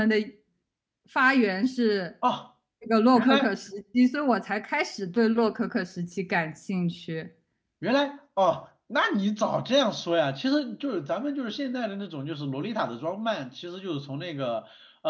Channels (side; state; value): both; identical; correlation 1.00